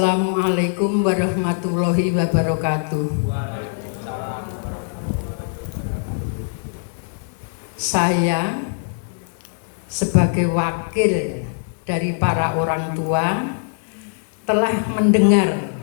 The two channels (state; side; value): silent; right; digital silence